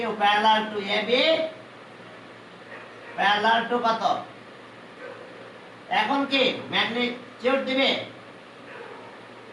parallel to AB parallel to কত, এখন কি ম্যাগনিটিউড দিবে,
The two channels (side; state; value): both; identical; correlation 1.00